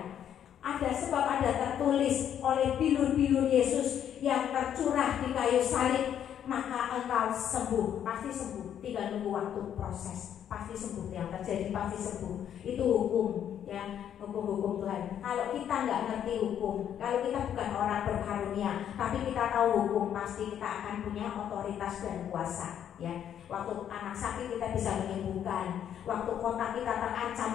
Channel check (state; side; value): quieter; right; 9.6 dB